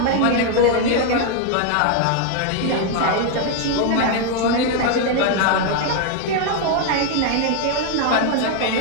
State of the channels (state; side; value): different; both; correlation 0.01